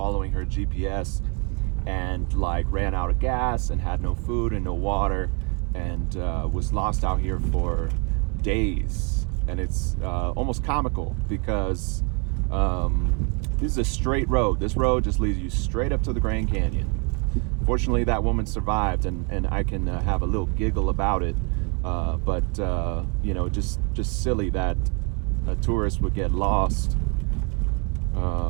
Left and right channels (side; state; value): left; quieter; 33.1 dB